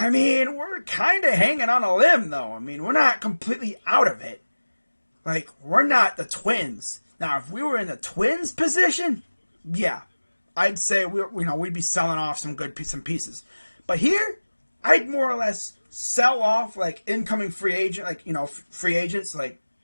mean, we're kind of hanging on a limb, though. I mean, we're not completely out of it. Like, we're not the Twins. Now, if we were in the Twins position, yeah, I'd say we'd be selling off some pieces. But here, I'd more or less sell off like incoming free agents, like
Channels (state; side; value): inverted; both; correlation -1.00